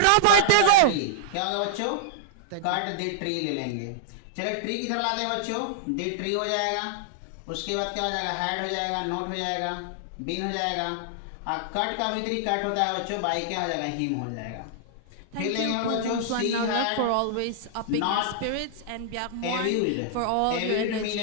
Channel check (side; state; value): both; different; correlation -0.01